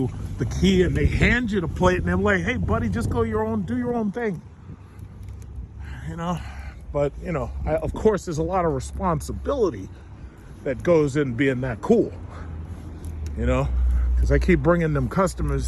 the key and they hand you the plate and they're like, hey, buddy, just go do your own thing. You know, but, you know, of course, there's a lot of responsibility that goes in being that cool, you know, because I keep bringing them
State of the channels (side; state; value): both; identical; correlation 1.00